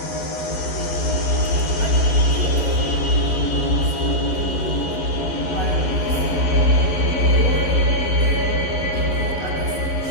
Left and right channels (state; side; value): late; right; 11 ms